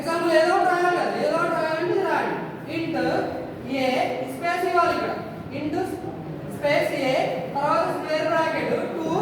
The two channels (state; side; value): identical; both; correlation 1.00